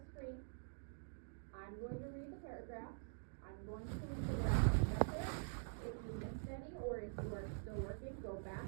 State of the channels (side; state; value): left; silent; digital silence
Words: screen. I'm going to read the paragraphs. I'm going to read the graph up there. If you missed any, or if you are still working, go back